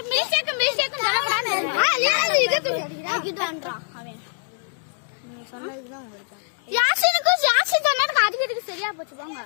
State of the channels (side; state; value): right; silent; digital silence